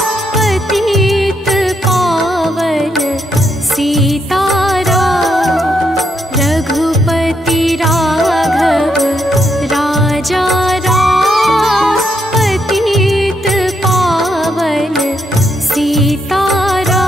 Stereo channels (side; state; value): both; normal; correlation 0.78